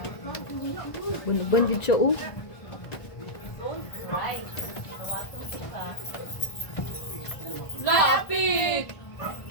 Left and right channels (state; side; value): late; right; 1.5 ms